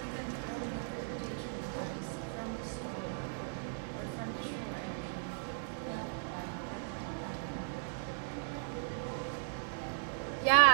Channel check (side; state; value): left; silent; digital silence